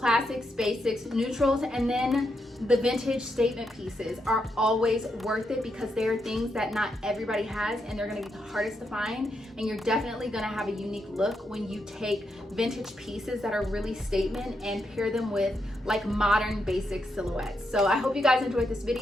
basics, neutrals, and then the vintage statement pieces are always worth it because they are things that not everybody has and they're gonna be the hardest to find, and you're definitely gonna have a unique look when you take vintage pieces that are really statement and pair them with like modern basic silhouettes. So I hope you guys enjoyed this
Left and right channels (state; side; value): normal; both; correlation 0.82